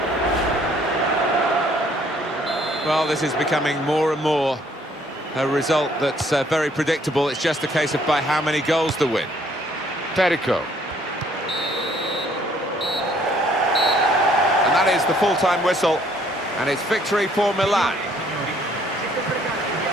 Well, this is becoming more and more a result that's very predictable. It's just a case of by how many goals to win. Perico. And that is the full-time whistle. And it's victory for Milan.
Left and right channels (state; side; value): normal; both; correlation 0.63